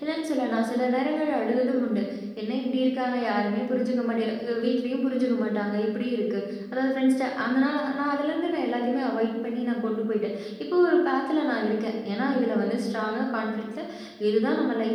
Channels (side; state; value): both; identical; correlation 1.00